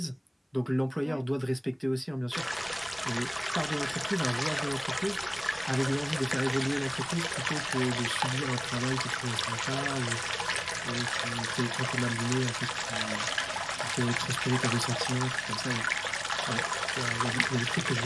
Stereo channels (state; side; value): identical; both; correlation 1.00